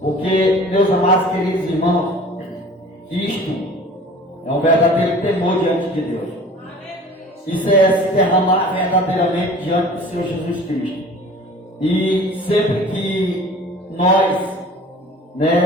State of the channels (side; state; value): both; normal; correlation 0.44